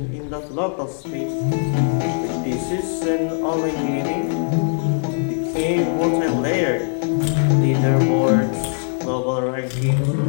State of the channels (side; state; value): right; silent; 61 dB below the other